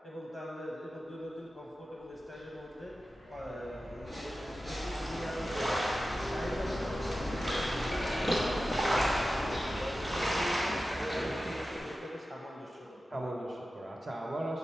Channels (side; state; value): both; normal; correlation 0.94